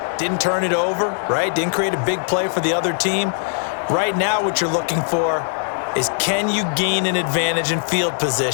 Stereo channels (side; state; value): right; silent; 62 dB below the other